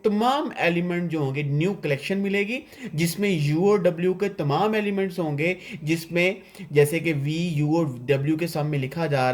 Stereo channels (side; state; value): both; identical; correlation 1.00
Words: तमाम एलिमेंट जो होंगे, न्यू कलेक्शन मिलेगी जिसमें u और w के तमाम एलिमेंट्स होंगे, जिसमें जैसे कि v u और w के सम में लिखा जा